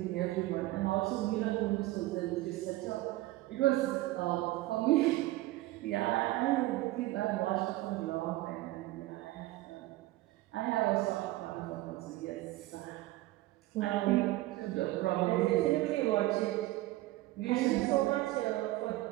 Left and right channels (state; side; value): quieter; left; 17.7 dB